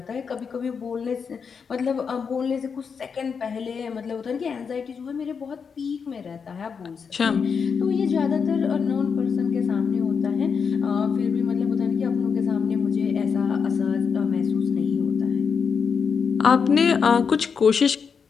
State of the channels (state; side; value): quieter; right; 6.1 dB